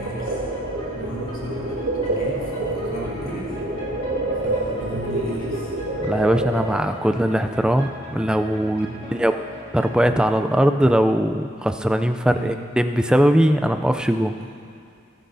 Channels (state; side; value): normal; both; correlation 0.81